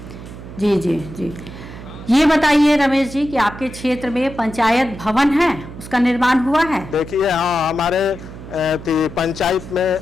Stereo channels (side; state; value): right; noise; hum, 14 dB below the sound